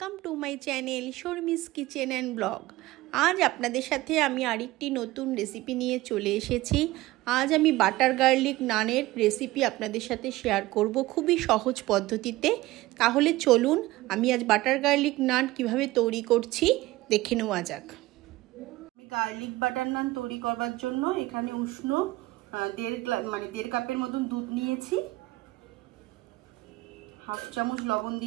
to my channel Sharmi's kitchen and blog. আজ আপনাদের সাথে আমি আরেকটি নতুন রেসিপি নিয়ে চলে এসেছি। আজ আমি বাটার গার্লিক নানের রেসিপি আপনাদের সাথে শেয়ার করব খুবই সহজ পদ্ধতিতে। তাহলে চলুন আমি আজ বাটার গার্লিক নান কিভাবে তৈরি করছি দেখে নেওয়া যাক। আমি গার্লিক বাটার নান তৈরি করবার জন্য এখানে উষ্ণ দেড় কাপের মতন দুধ নিয়েছি। হাফ চামচ লবণ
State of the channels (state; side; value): quieter; left; 18.5 dB